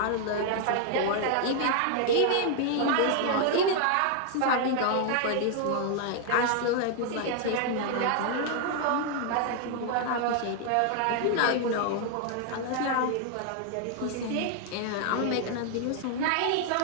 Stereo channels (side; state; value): both; different; correlation 0.00